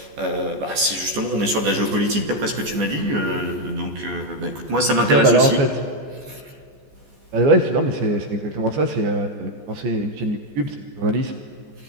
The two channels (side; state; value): left; late; 14 ms